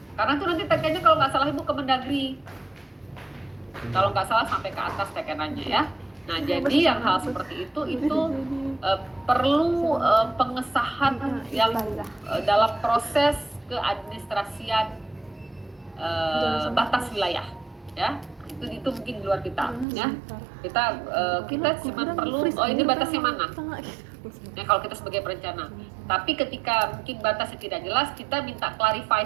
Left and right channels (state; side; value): drops out; left; at 19.9 s